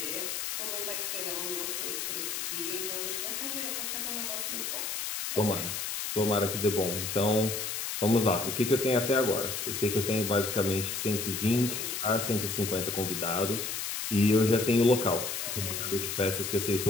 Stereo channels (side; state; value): left; noise; hiss, 3 dB below the sound